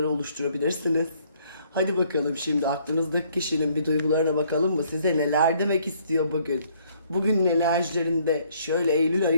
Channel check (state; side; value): inverted; both; correlation -0.65